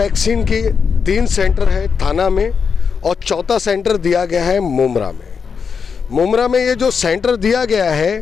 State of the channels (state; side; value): quieter; right; 6.0 dB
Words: की 3 सेंटर है थाना में और चौथा सेंटर दिया गया है मुमरा में। मुमरा में ये जो सेंटर दिया गया है